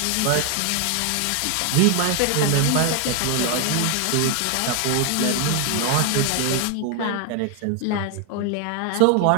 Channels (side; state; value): both; different; correlation 0.01